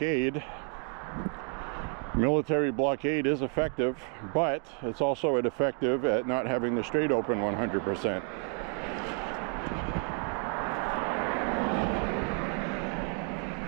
Military blockade is effective, but it's also ineffective at not having the strait open 100%.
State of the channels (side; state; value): left; quieter; 38.8 dB